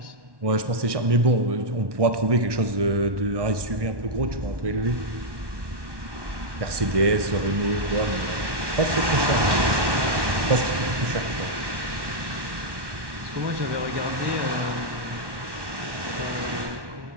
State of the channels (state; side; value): late; left; 1.1 ms